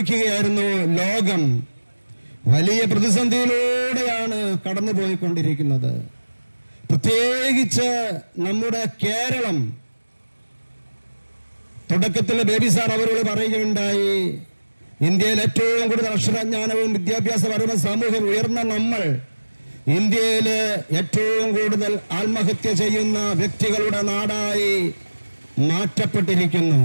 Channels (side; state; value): both; inverted; correlation -1.00